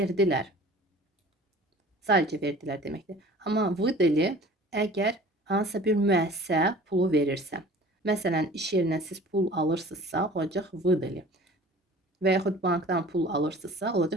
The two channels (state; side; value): normal; both; correlation 0.45